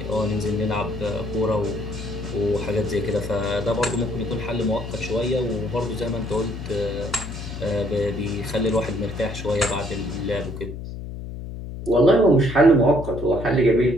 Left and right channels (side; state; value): left; noise; hum, 9 dB below the sound